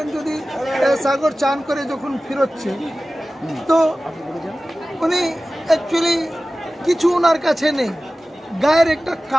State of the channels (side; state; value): both; normal; correlation 0.96